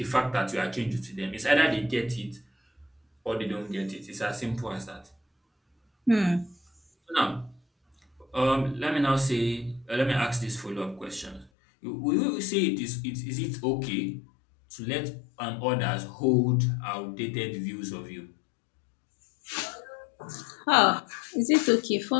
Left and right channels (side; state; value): right; drops out; at 11.5 s